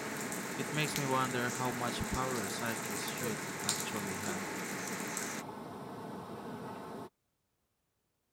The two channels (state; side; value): identical; both; correlation 1.00